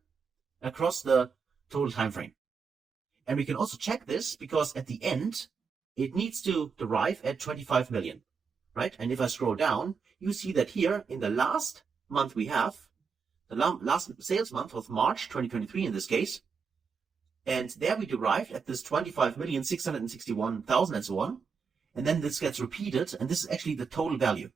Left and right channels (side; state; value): left; quieter; 5.6 dB